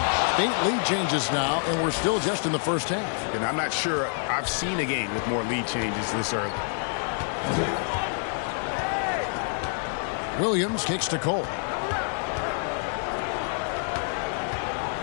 8 lead changes now, and we're still just in the first half. And I'm not sure I've seen a game with more lead changes this early. Williams kicks to Cole.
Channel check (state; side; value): silent; right; 60 dB below the other